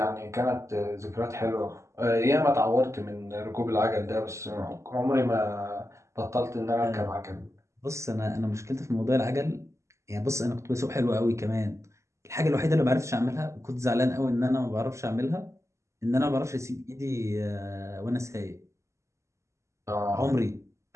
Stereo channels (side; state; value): left; late; 0.14 ms